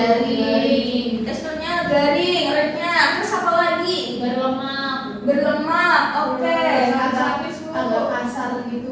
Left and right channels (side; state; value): both; identical; correlation 1.00